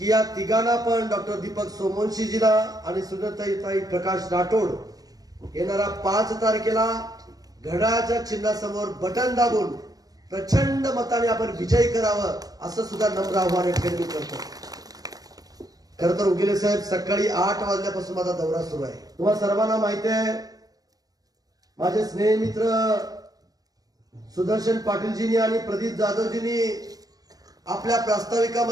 या तिघांना पण डॉक्टर दीपक सोमवंशीजीला आणि सुनीताताई प्रकाश राठोड येणारा 5 तारखेला घड्याळाच्या चिन्हासमोर बटन दाबून प्रचंड मताने आपण विजयी करावं असं सुद्धा नम्र आव्हान या ठिकाणी करतो. खरं तर उगेले साहेब, सकाळी 8 वाजल्यापासून माझा दौरा सुरू आहे. तुम्हाला सर्वांना माहिती आहे, माझे स्नेह मित्र सुदर्शन पाटीलजींनी आणि प्रदीप जाधवजींनी आपल्या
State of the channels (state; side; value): late; left; 0.18 ms